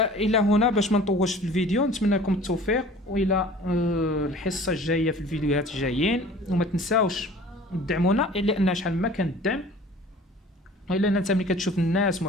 الى هنا باش ما نطولش في الفيديو، نتمنى لكم التوفيق والى الحصه الجايه في الفيديوهات الجايين. وما تنساوش تدعمونا لان شحال ما كان الدعم الا انت ملي كتشوف الناس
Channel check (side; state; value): both; normal; correlation 0.46